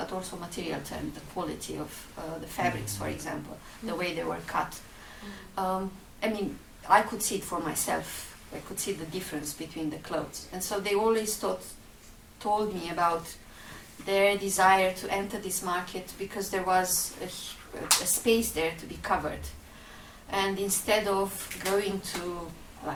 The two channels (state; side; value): identical; both; correlation 1.00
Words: also material terms, the quality of the fabrics, for example, the way they were cut. I mean, I could see it for myself. I could see the difference between the clothes. And so they always told me about their desire to enter this market because there was a space there to be covered. And instead of going to